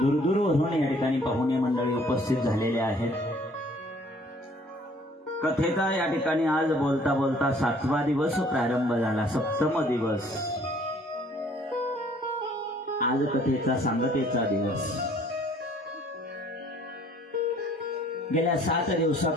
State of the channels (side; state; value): both; normal; correlation 0.57